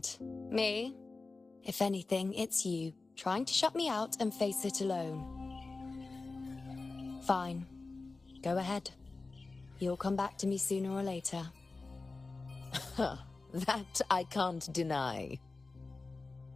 Me? If anything, it's you, trying to shut me out and face it alone. Fine. Go ahead. You'll come back to me sooner or later. That I can't deny.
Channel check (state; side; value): quieter; right; 3.7 dB